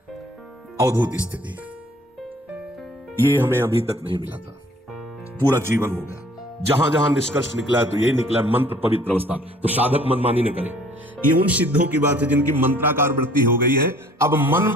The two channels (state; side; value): normal; both; correlation 0.55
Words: अवधूत स्थिति, ये हमें अभी तक नहीं मिला था, पूरा जीवन हो गया। जहां जहां निष्कर्ष निकला है तो यही निकला है, मंत्र पवित्र अवस्था। तो साधक मनमानी न करे। ये उन सिद्धों की बात है जिनकी मंत्राकार वृत्ति हो गई है, अब मन